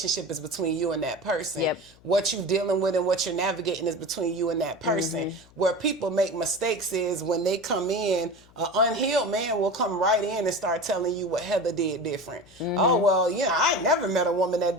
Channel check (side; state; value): left; noise; hum, 27 dB below the sound